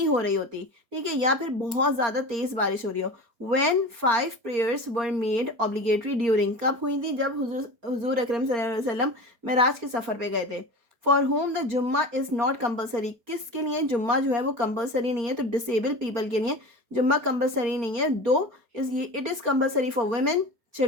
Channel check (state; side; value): late; left; 4.3 ms